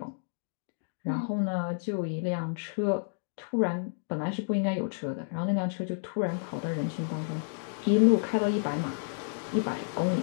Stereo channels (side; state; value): right; silent; digital silence